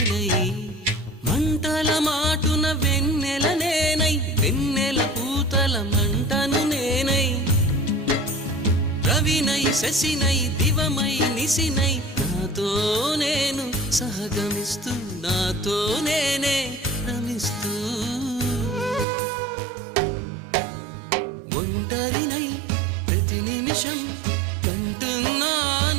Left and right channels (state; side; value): drops out; left; at 19.1 s